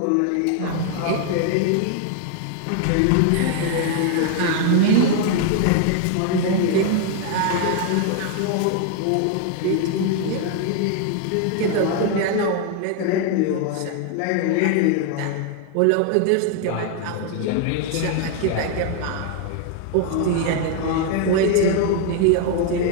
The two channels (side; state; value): both; different; correlation 0.00